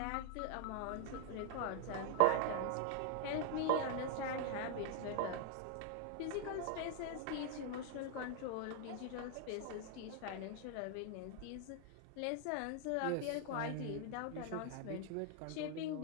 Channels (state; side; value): different; both; correlation 0.00